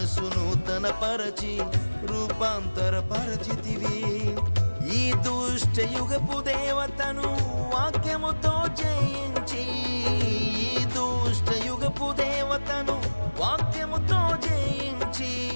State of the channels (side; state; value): both; inverted; correlation -1.00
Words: నూతనపరచి రూపాంతరపరచితివి. ఈ దుష్ట యుగపు దేవతను వాక్యముతో జయించి, ఈ దుష్ట యుగపు దేవతను వాక్యముతో జయించి